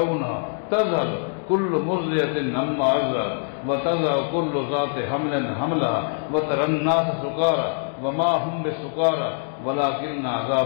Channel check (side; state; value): right; silent; digital silence